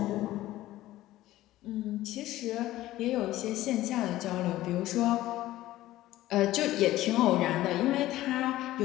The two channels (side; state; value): right; quieter; 15.6 dB